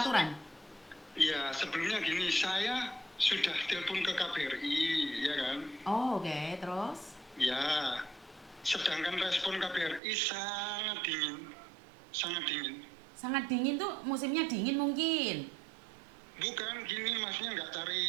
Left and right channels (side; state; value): left; drops out; at 10.0 s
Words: Iya, sebelumnya gini, saya sudah telepon ke KBRI, ya kan? Oh, oke, terus? Ya, sedangkan respon KBRI sangat dingin, sangat dingin. Sangat dingin tuh, musimnya dingin mungkin. Bukan gini, maksudnya nggak cari,